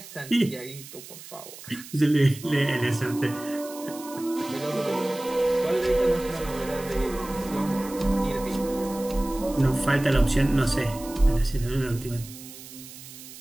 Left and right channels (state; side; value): noise; right; hiss, 15 dB below the sound